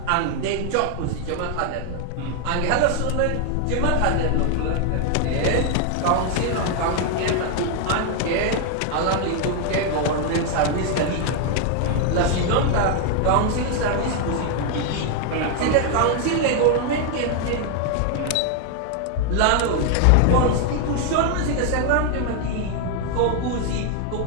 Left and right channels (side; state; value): both; different; correlation 0.00